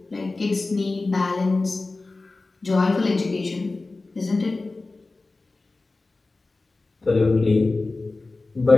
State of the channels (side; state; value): right; quieter; 3.4 dB